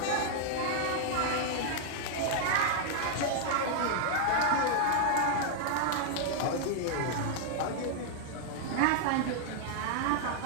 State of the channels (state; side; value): different; both; correlation 0.00